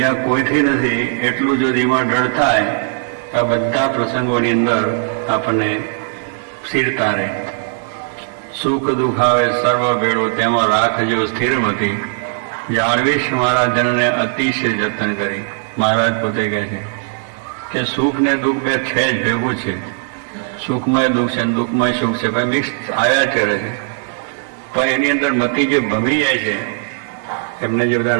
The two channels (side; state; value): left; silent; digital silence